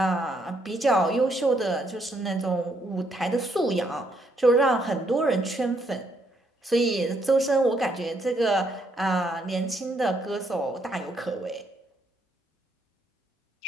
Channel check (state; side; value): normal; both; correlation 0.73